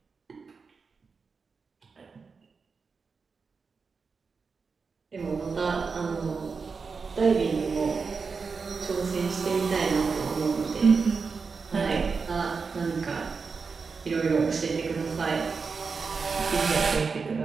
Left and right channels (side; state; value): left; quieter; 5.0 dB